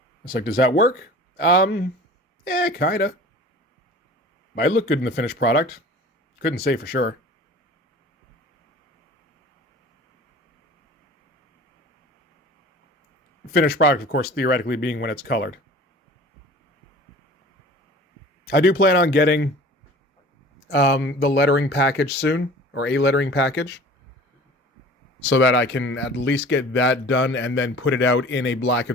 It's does that work? Yeah, kinda. Might look good in the finished product. Couldn't say for sure. Finished product, of course, theoretically being when it's colored. I do plan on getting the lettering package soon, or a lettering package, so that I can at least get that done and then put it out in a black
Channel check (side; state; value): both; normal; correlation 0.43